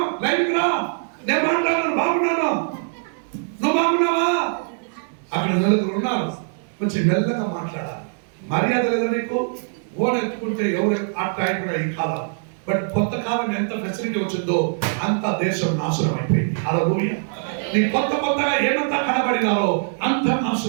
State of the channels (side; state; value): left; silent; digital silence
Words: లైన్కి రా, నేను మాట్లాడాను, బాగున్నాను, నువ్వు బాగున్నావా? అక్కడ నలుగురు ఉన్నారు. కొంచెం మెల్లగా మాట్లాడాలి. మర్యాద లేదా నీకు? ఫోన్ ఎత్తుకుంటే ఎవరు అట్లా ఈ కాలం. బట్ కొత్త కాలం ఎంత ఫెసిలిటీ వచ్చిందో అంత దేశం నాశనం అయిపోయింది. హల్లెలూయా. నీ కొత్తగా ఏమంతా కనబడినారో అంత